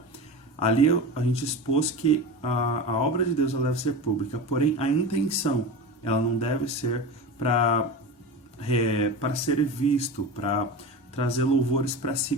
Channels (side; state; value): both; normal; correlation 0.27